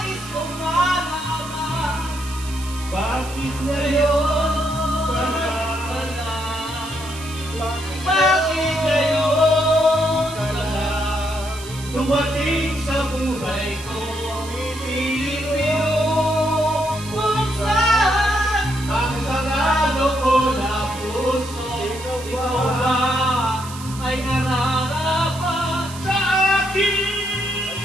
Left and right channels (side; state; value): right; noise; hiss, 14 dB below the sound